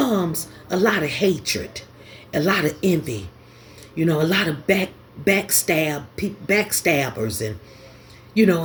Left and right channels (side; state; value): both; identical; correlation 1.00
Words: a lot of hatred, a lot of envy, you know, a lot of backstabbers and You know,